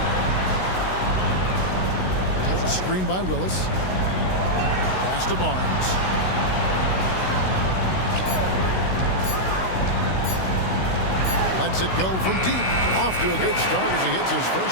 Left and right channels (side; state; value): right; late; 16 ms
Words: There's a screen by Willis. Pass to Barnes. Lets it go from deep. Off to a good start as he hits his